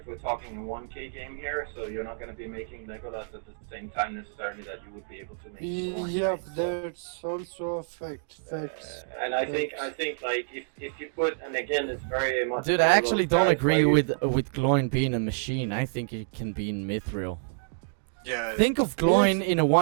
we're talking a 1K game here, so you're not going to be making Legolas at the same time necessarily that you would be able to make. Gloin, yeah, right? So, that's also a fact. Facts. and I think like if you put, and again it's very much. Dude, I actually don't agree with. with Gloin being a machine. I think it can be in mithril. Yeah. Think of Gloin in a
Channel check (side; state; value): left; silent; digital silence